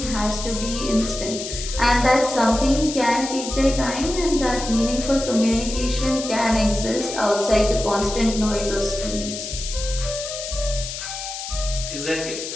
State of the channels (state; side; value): noise; left; hiss, 7 dB below the sound